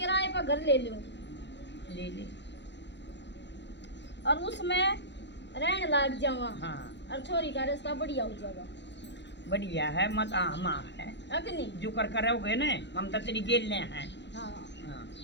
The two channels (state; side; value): late; right; 0.52 ms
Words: किराए पर घर ले लूं ले ले और उसमें रहने लग जावा हाँ और छोरी का रास्ता बढ़िया हो जाएगा बढ़िया है मत आमा है अग्नि जो कर करोगे ना हम तो तेरी गेल हैं। हाँ हाँ